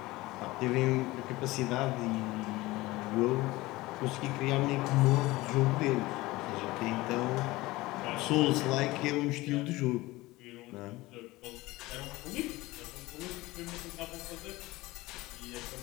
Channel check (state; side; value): quieter; right; 19.8 dB